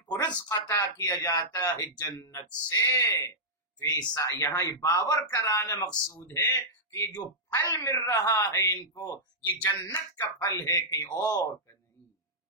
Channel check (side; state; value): both; normal; correlation -0.10